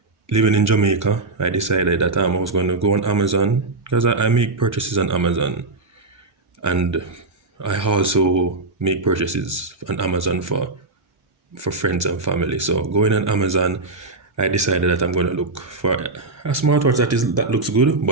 living in Jamaica, I decided that I was going to go on Amazon because I make purchases on Amazon, and I also make purchases on Amazon for friends and family. So going on Amazon, I decided that I'm going to look for a smartwatch that looks good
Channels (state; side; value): quieter; left; 3.3 dB